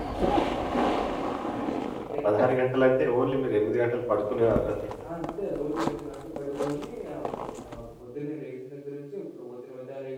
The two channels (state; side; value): identical; both; correlation 1.00